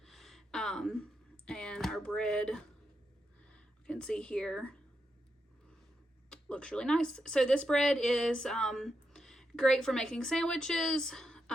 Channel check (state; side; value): normal; both; correlation 0.84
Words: and our bread, you can see here, looks really nice. So this bread is great for making sandwiches.